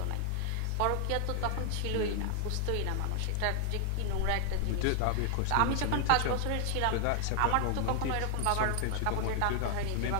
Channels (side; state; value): both; different; correlation 0.00